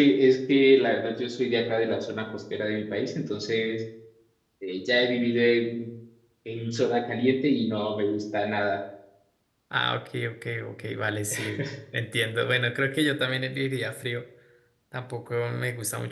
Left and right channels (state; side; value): identical; both; correlation 1.00